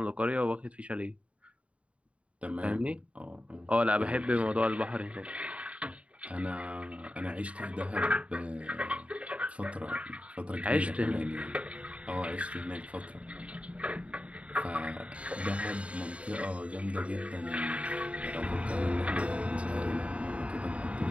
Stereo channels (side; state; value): left; late; 0.063 ms